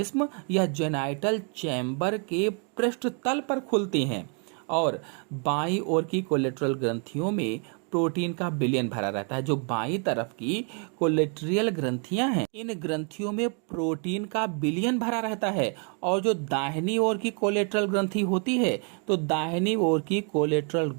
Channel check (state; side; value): quieter; left; 39.0 dB